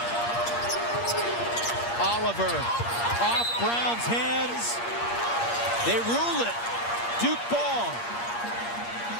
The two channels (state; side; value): late; right; 8.5 ms